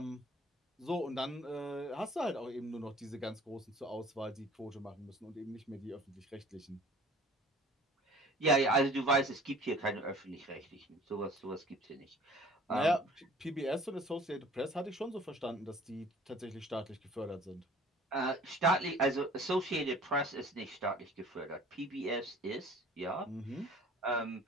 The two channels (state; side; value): normal; both; correlation 0.49